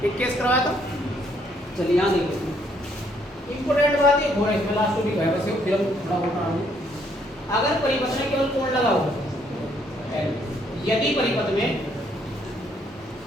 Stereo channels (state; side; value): normal; both; correlation 0.69